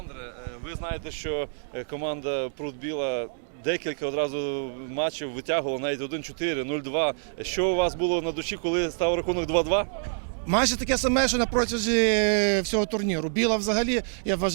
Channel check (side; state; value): left; silent; 60 dB below the other